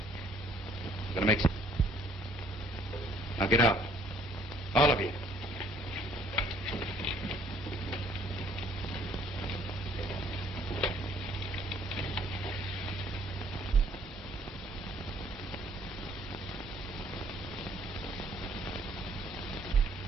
gonna make... Now get out. All of you.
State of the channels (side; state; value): both; normal; correlation 0.61